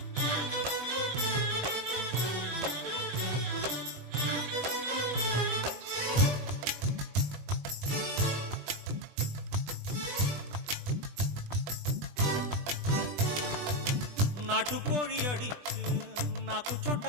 நாட்டுக்கோழி அடிச்சு நாக்கு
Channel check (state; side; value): late; left; 20 ms